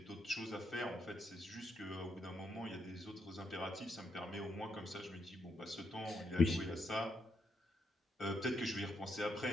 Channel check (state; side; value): normal; both; correlation 0.78